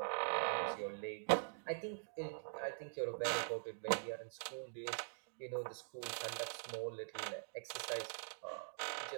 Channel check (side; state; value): left; silent; digital silence